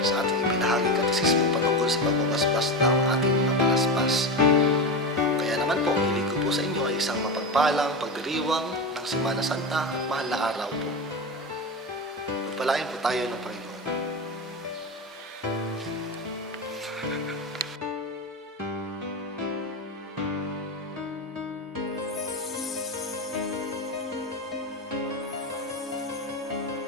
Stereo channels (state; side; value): normal; both; correlation 0.19